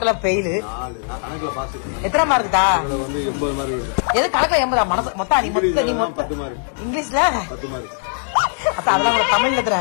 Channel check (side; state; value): right; silent; digital silence